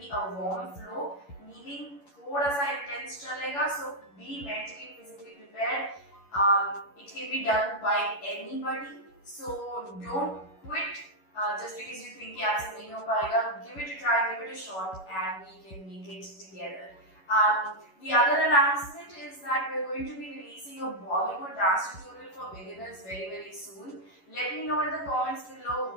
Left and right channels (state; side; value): late; right; 11 ms